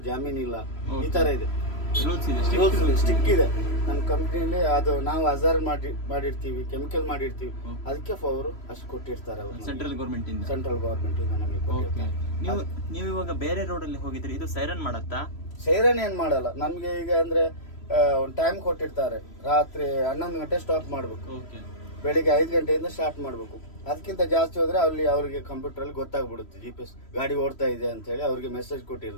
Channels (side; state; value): right; late; 3.0 ms